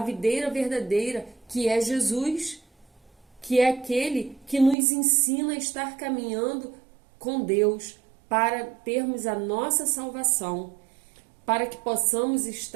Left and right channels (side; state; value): left; drops out; at 4.8 s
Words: verdadeira, que é Jesus, que é aquele que nos ensina a estar caminhando com Deus para termos a nossa salvação, para que possamos